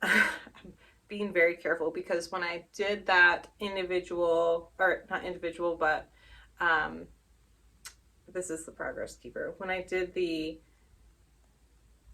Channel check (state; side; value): identical; both; correlation 1.00